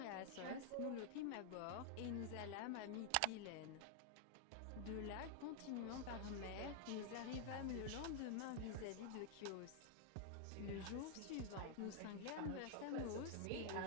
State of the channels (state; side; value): different; both; correlation 0.00